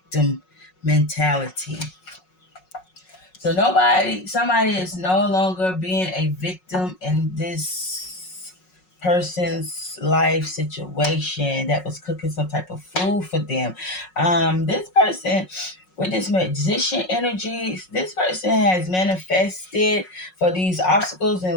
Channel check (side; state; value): right; late; 5.4 ms